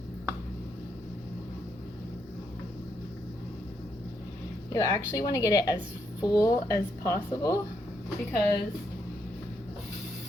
You actually want to get it as full as possible because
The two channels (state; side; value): normal; both; correlation 0.78